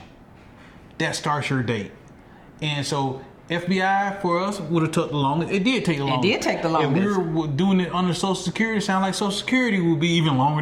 that starts your date. And so FBI for us would have took the longest. It did take the longest. It did take the longest. If we were doing it under Social Security, it sounds like Social Security would be even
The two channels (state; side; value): identical; both; correlation 1.00